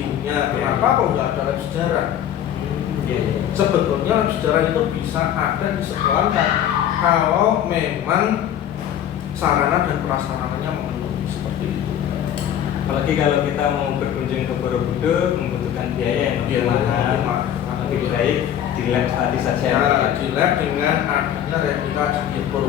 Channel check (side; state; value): right; quieter; 10.3 dB